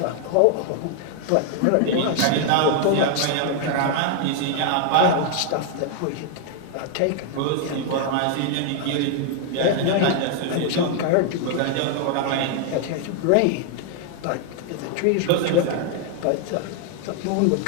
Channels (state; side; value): different; both; correlation 0.00